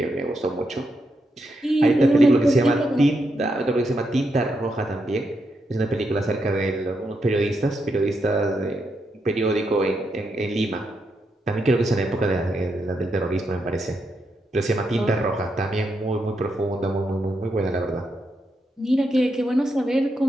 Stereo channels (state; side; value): normal; both; correlation 0.82